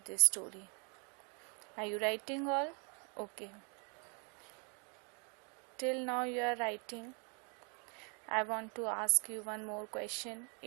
this story. Are you writing all? Okay. Till now you are writing. I want to ask you one more question.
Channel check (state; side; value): quieter; left; 36.3 dB